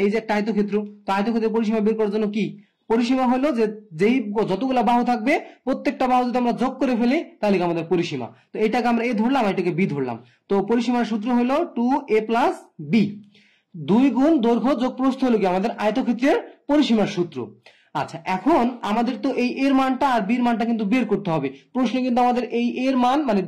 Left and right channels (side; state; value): both; identical; correlation 1.00